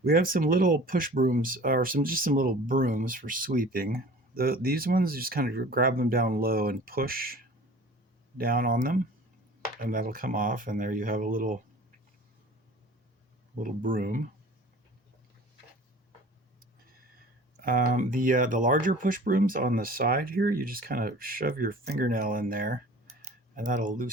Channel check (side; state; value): both; normal; correlation 0.44